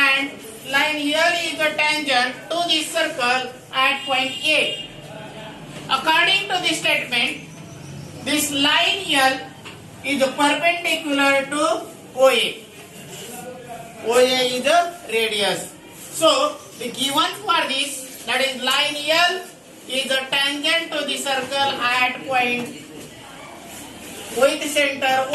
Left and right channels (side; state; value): both; identical; correlation 1.00